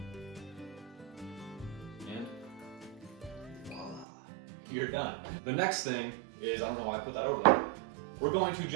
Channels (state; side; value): drops out; left; at 4.0 s